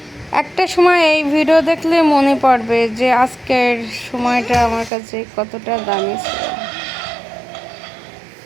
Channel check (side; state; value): left; drops out; at 4.9 s